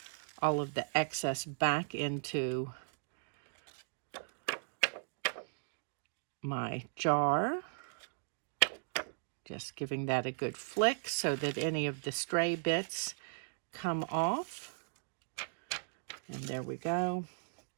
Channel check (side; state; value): left; silent; digital silence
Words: all of the excess back into my jar. Just giving that a good flick so that any of the stray bits come off. And there we go.